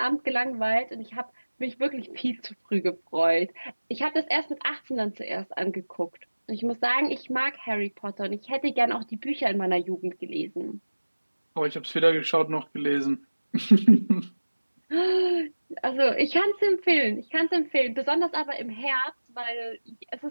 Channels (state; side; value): inverted; both; correlation -1.00